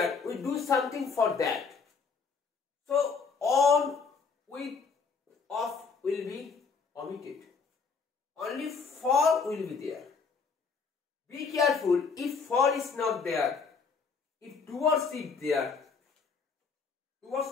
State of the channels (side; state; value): right; quieter; 5.2 dB